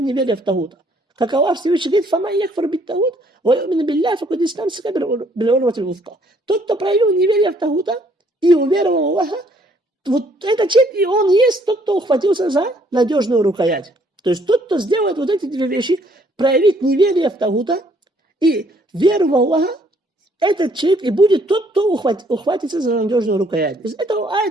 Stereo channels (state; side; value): normal; both; correlation 0.64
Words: неверие в Тагута. Как Аллах Всевышний говорит, «Фама якфар бит Тагут, ва юмину билляхи, факад истамсика бил урватил вуфка». Тот, кто проявил неверие в Тагута и уверовал в Аллаха, вот этот человек, и он есть тот, кто ухватился за надежную рукоять. То есть тот, кто сделает вот эти две вещи, проявит неверие в Тагута и веру в Аллаха, этот человек и будет тот, кто ухватится за надежную рукоять. Из этого